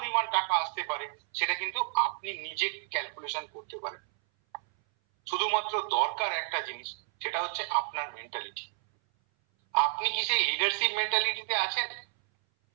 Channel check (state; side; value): silent; left; 57 dB below the other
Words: টাকা আসতে পারে সেটা কিন্তু আপনি নিজে ক্যালকুলেশন করতে পারেন। শুধুমাত্র দরকার একটা জিনিস, সেটা হচ্ছে আপনার মেন্টালিটি। আপনি কি সেই লিডারশিপ মেন্টালিটিতে আছেন?